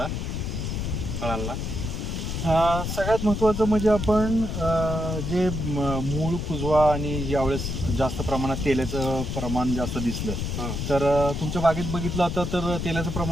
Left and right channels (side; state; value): left; noise; rumble, 3 dB below the sound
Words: फळांना. सगळ्यात महत्त्वाचं म्हणजे आपण जे मूळ कुजवा आणि यावेळेस जास्त प्रमाणात तेलाचं प्रमाण जास्त दिसलं, तर तुमच्या बागेत बघितलं आता तर तेलाचं